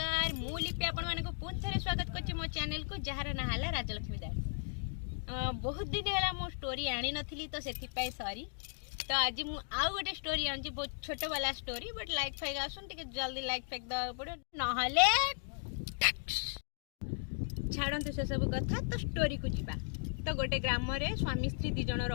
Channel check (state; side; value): silent; right; digital silence